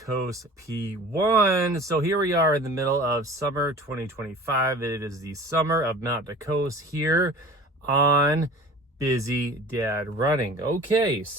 P1. So here we are in the middle of summer 2025. It is the summer of Mount to Coast here on Busy Dad Running. Okay,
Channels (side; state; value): both; normal; correlation 0.42